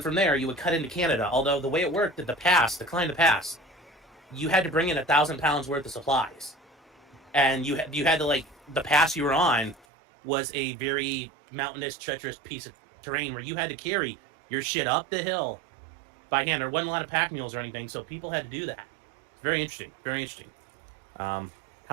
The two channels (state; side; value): drops out; left; at 9.9 s